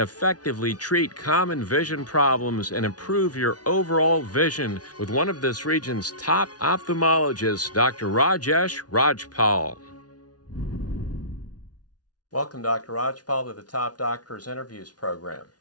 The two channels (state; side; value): late; right; 0.69 ms